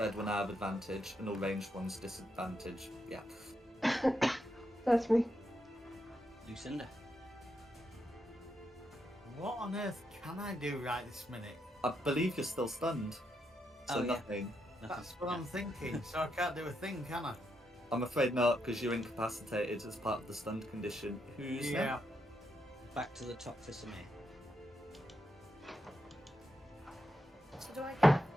will now have advantage, and all ranged ones disadvantage. Yeah. That's me. Lucinda. What on earth can I do right this minute? I believe you're still stunned. So Oh, yeah. nothing. That's what I'm thinking. So I can't do a thing, can I? I'm afraid not, because you're incapacitated as part of the stunned condition. Who's Yeah. Back to the top for Samir. So do I get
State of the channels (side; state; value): both; normal; correlation 0.82